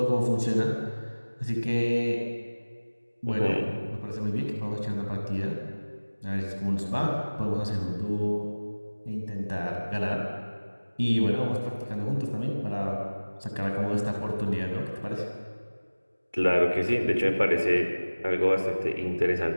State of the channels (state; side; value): inverted; both; correlation -1.00